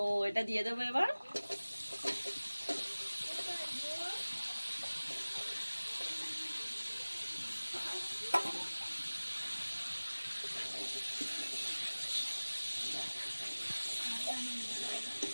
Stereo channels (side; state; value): both; inverted; correlation -1.00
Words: এটা দিয়ে দেবো এবার।